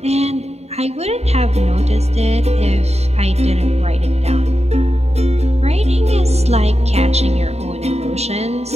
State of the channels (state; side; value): late; left; 0.31 ms